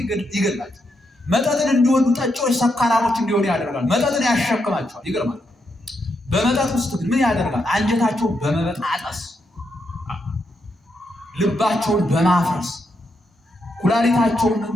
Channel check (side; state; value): both; normal; correlation 0.81